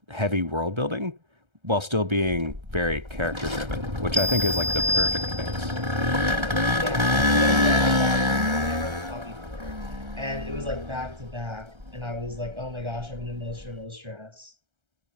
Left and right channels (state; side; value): late; left; 1.3 ms